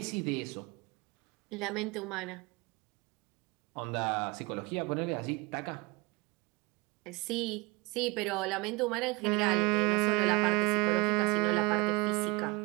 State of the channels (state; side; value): quieter; left; 26.4 dB